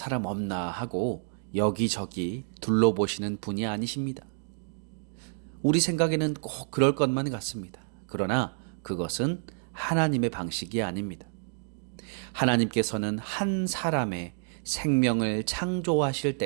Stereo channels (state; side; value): silent; left; digital silence